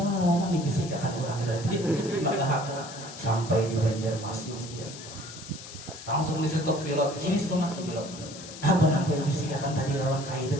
nih bisikan orang tadi sampai di Banjarmasin langsung di stop pilot sini setengah pilot apa yang bisikan tadi lawan kai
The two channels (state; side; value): noise; left; hiss, 14 dB below the sound